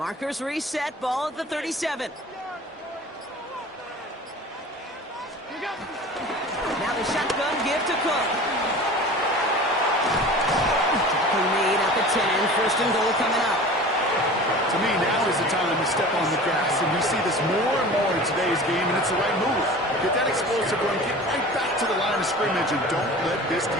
reset, ball at the 37. Now the shotgun give to Cook. Tackle made at the 10, first and goal coming up. To me, now is the time to step on the gas, and we see this more and more in today's game, and it's the right move. Get that explosive going, get right back to the line of scrimmage, and don't let this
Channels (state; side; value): normal; both; correlation 0.39